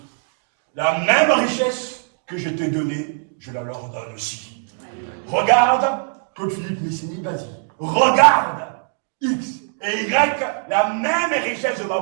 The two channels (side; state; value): left; silent; digital silence